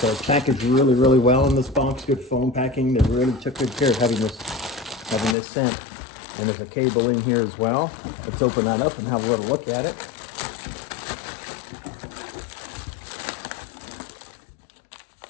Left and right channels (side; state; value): right; drops out; at 5.4 s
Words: it's packaged really, really well in this box. Good foam packing. They really took good care of having this sent. And there's a cable in here as well. Let's open that up and have a little look at it.